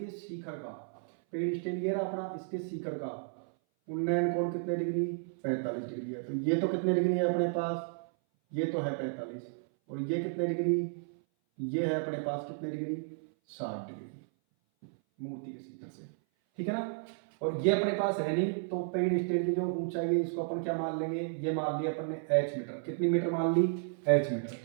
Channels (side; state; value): left; silent; 56 dB below the other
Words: शिखर का, पेड़ स्टेल ये रहा अपना, इसके शिखर का उन्नयन कोण कितने डिग्री, 45 डिग्री है। तो ये तो कितने डिग्री है अपने पास, ये तो है 45, और ये कितने डिग्री, ये है अपने पास कितने डिग्री, 60 डिग्री मूर्ति के शिखर से, ठीक है ना। और ये अपने पास है नहीं, तो पेड़ स्टेल की जो ऊंचाई है इसको अपन क्या मान लेंगे, ये मान लिया अपन ने h मीटर, कितनी मीटर मान ली, h मीटर,